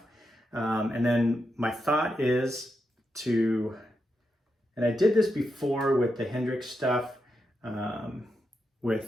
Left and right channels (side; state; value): both; normal; correlation 0.85